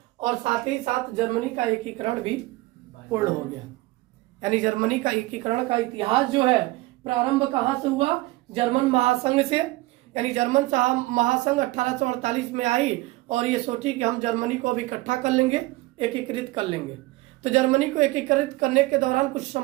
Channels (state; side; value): quieter; left; 20.1 dB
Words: और साथ ही साथ जर्मनी का एकीकरण भी पूर्ण हो गया। यानी जर्मनी का एकीकरण का इतिहास जो है प्रारंभ कहां से हुआ? जर्मन महासंघ से। यानी जर्मन महासंघ 1848 में आई और ये सोची कि हम जर्मनी को अब इकट्ठा कर लेंगे, एकीकृत कर लेंगे। तो जर्मनी को एकीकृत करने के दौरान कुछ